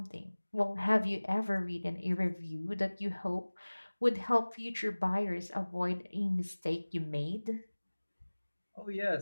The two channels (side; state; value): both; inverted; correlation -1.00